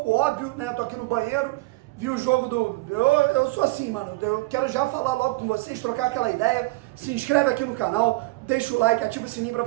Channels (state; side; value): quieter; left; 22.3 dB